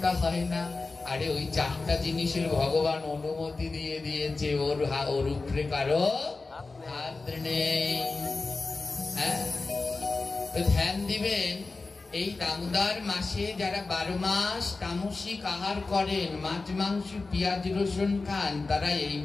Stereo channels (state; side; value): quieter; right; 3.7 dB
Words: হয় না। আরে ওই 4টা জিনিসের ভগবান অনুমতি দিয়ে দিয়েছে, ওর উপরে কারো হাত নেই। হ্যাঁ, তো ধ্যান দিবেন। এই দামোদর মাসে যারা 12 মাস তামসিক আহার করেন, মাছ মাংস পেঁয়াজ রসুন খান, তারা এই